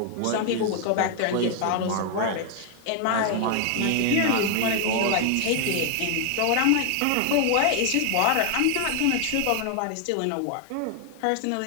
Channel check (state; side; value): different; both; correlation 0.00